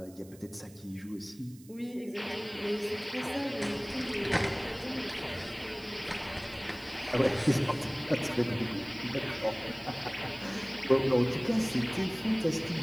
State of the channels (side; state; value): right; noise; hiss, 23 dB below the sound